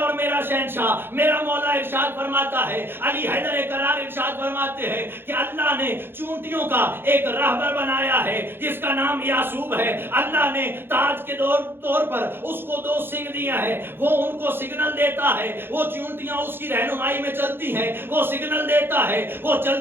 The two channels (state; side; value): late; left; 0.10 ms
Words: میرا شہنشاہ میرا مولا ارشاد فرماتا ہے, علی حیدر قرار ارشاد فرماتے ہیں کہ اللہ نے چونٹیوں کا ایک راہبر بنایا ہے جس کا نام یعصوب ہے. اللہ نے تاج کے طور پر اس کو 2 سنگ دیا ہے, وہ ان کو سگنل دیتا ہے, وہ چونٹیاں اس کی رہنمائی میں چلتی ہیں, وہ سگنل دیتا ہے, وہ